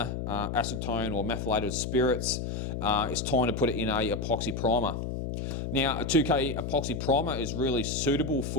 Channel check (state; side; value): noise; left; hum, 4 dB below the sound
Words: acetone or methylated spirits. It's time to put it in a epoxy primer. Now, a 2K epoxy primer is really suitable